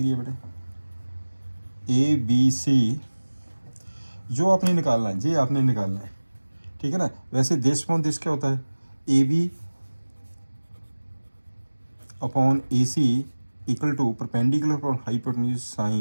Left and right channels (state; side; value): inverted; both; correlation -1.00